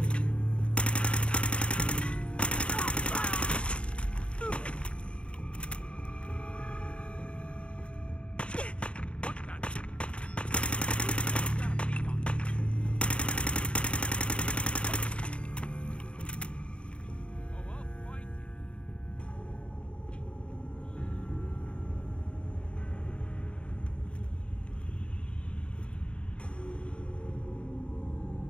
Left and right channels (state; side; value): late; right; 0.058 ms